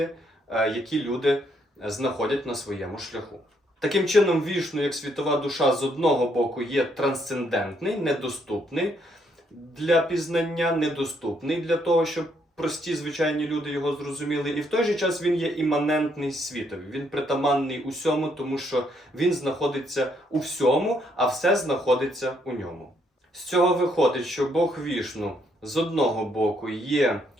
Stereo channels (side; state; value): both; normal; correlation 0.72